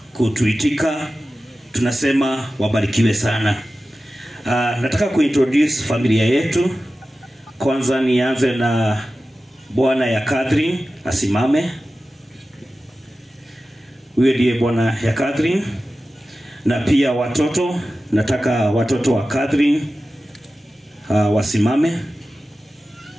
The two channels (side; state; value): both; normal; correlation 0.94